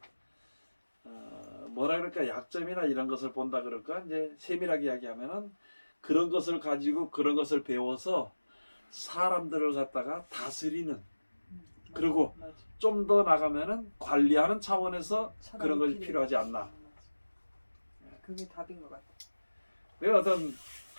뭐라 그럴까 약점이나 이런 것을 본다 그럴까 이제 세밀하게 이야기하면은 그런 것을 가지고 그런 것을 배워서 사람들을 갖다가 다스리는 그리고 좀 더 나가면은 관리하는 차원에서 그런 것이 필요하지 않나. 그게 답인 것 같아. 내가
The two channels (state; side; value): inverted; both; correlation -1.00